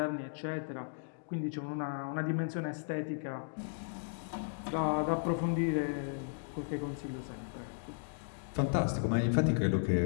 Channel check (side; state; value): right; silent; digital silence